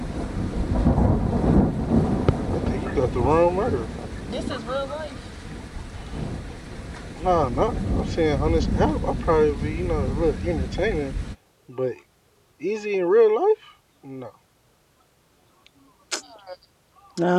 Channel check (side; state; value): both; identical; correlation 1.00